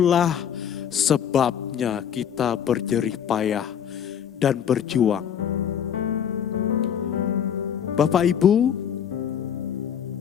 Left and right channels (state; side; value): quieter; right; 8.6 dB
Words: sebabnya kita berjerih payah dan berjuang. Bapak Ibu,